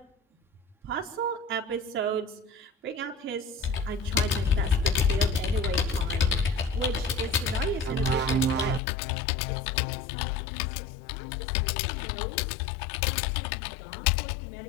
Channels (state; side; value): drops out; right; at 8.8 s